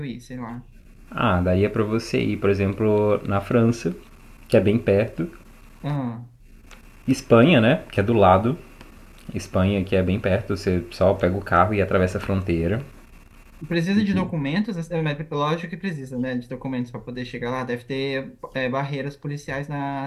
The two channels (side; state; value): both; identical; correlation 1.00